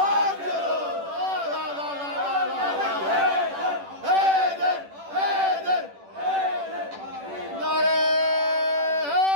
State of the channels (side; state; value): left; late; 10 ms